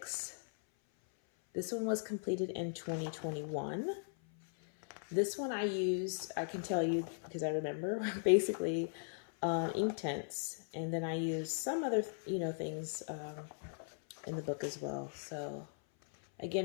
This one was completed in 2021. This one I used, I can tell you because I remember, basically ink tints. And then I used some other, things in the book as well. So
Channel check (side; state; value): right; silent; 52 dB below the other